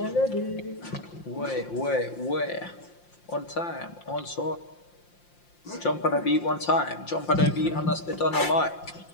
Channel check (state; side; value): late; right; 5.7 ms